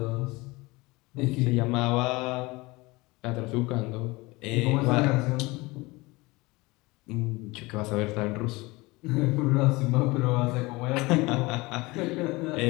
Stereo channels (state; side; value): quieter; right; 22.9 dB